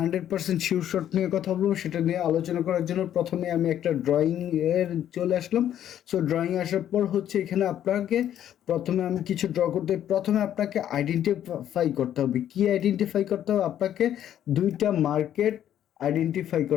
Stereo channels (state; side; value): quieter; right; 10.8 dB